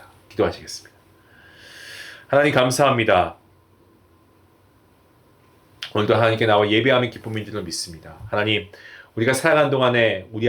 기도하시겠습니다. 하나님 감사합니다. 오늘도 하나님께 나와 예배하는 기쁨인 줄로 믿습니다. 하나님, 우리가 살아가는 동안에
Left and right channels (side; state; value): both; identical; correlation 1.00